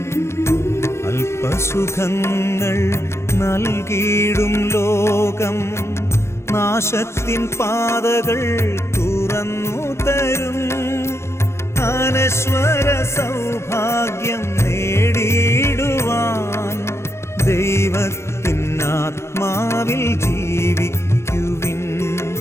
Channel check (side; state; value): right; late; 0.13 ms